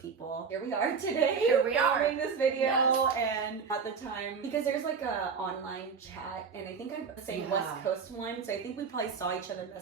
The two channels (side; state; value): left; quieter; 5.8 dB